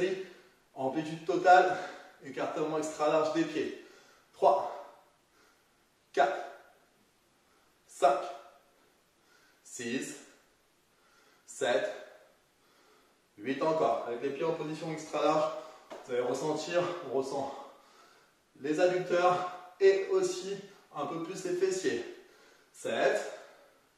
Amplitude totale. Écartement extra large des pieds. 3, 4, 5, 6, 7, 8 encore. Avec les pieds en position extra large, vous allez ressentir, on ressent les adducteurs et aussi un peu plus les fessiers. 7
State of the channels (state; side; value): identical; both; correlation 1.00